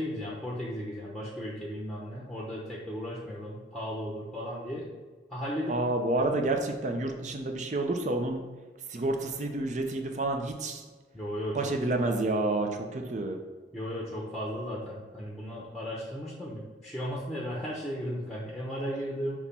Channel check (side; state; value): both; normal; correlation 0.47